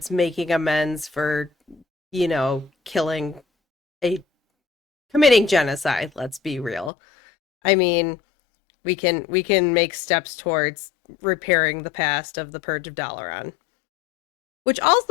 making amends for, killing a committing genocide, let's be real. I mean, we can make steps towards repairing the past of the Purge of Dalaran, which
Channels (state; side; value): drops out; right; at 6.9 s